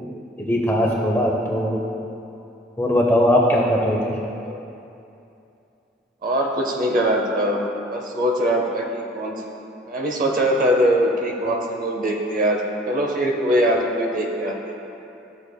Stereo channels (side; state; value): both; normal; correlation 0.49